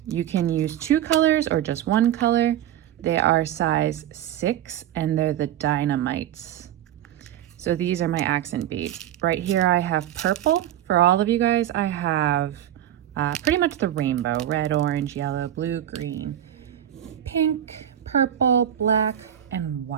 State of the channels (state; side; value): quieter; left; 11.3 dB